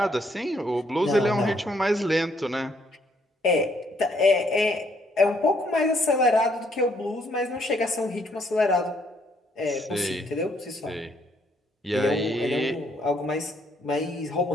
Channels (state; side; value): normal; both; correlation 0.69